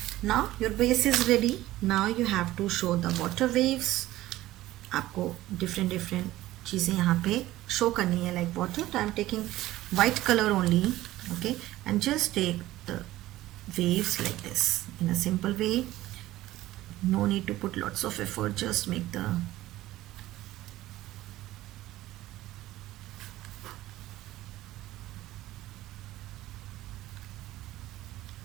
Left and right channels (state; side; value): quieter; left; 15.9 dB